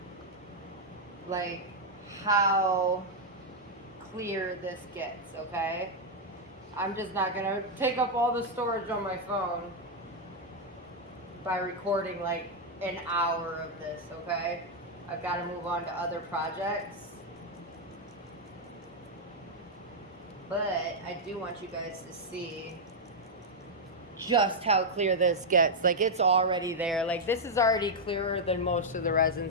like how clear this gets, okay? I'm just not gonna take up all the storage on my phone by recording like an hour of this, okay? I've got to move on to other projects. But I do want you guys to see just how clear this gets. Like, it's already there. Like, this is already clearer than most of the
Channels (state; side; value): normal; both; correlation -0.02